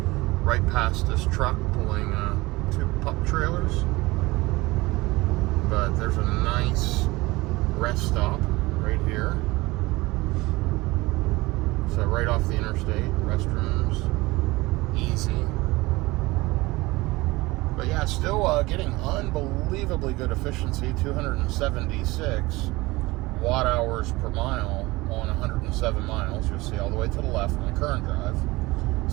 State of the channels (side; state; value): left; quieter; 21.2 dB